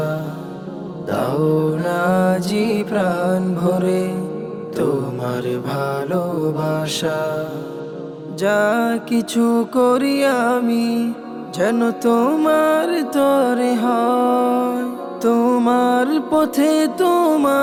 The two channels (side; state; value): both; identical; correlation 1.00